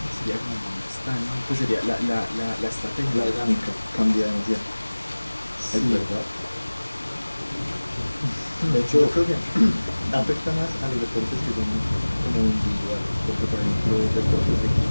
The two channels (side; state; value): both; inverted; correlation -1.00